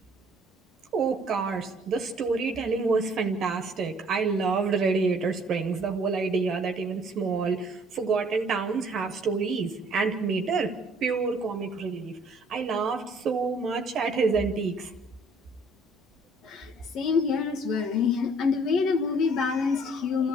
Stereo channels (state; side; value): normal; both; correlation 0.58